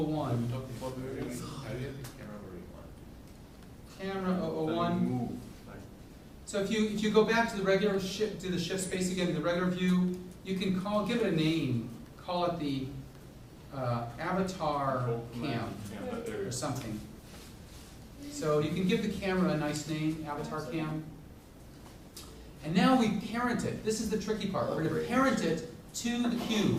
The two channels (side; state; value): both; identical; correlation 1.00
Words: Camera 001. So if you go back to the regular shift, to the shift space again, the regular view, you can give it a name. Call it the avatar cam or something. So you can give the camera a nice name, avatar cam. And now we parent it. This is the tricky part. We're going to parent it to the